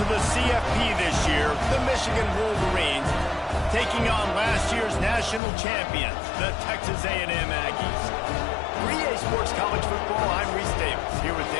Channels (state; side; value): drops out; right; at 5.4 s